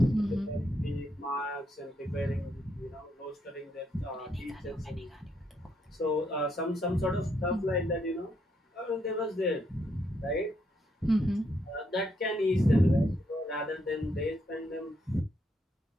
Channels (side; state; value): both; normal; correlation 0.76